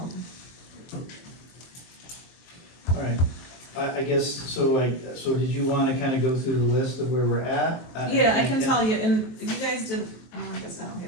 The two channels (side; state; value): right; late; 23 ms